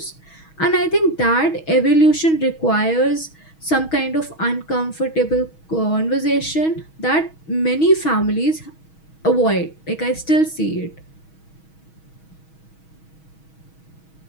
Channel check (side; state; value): right; late; 6.3 ms